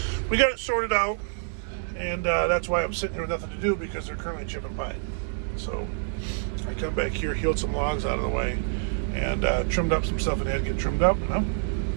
we got it sorted out, and that's why I'm sitting here with nothing to do, because they're currently chipping pine. So I come back here, healed some logs out of the way, and trimmed up some stuff that had to get trimmed up, and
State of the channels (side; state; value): left; silent; digital silence